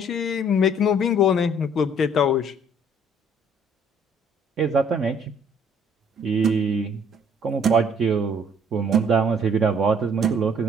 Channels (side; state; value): both; normal; correlation 0.59